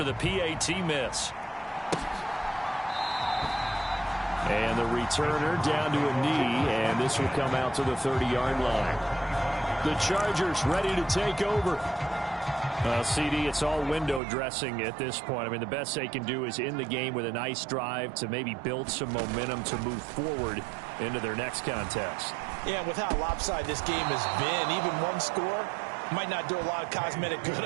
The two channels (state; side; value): drops out; left; at 14.2 s